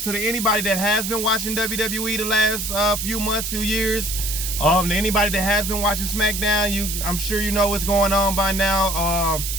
to anybody that has been watching WWE the last few months, few years, to anybody that has been watching SmackDown, I'm sure you know what's going on by now.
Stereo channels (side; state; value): right; noise; hiss, 4 dB below the sound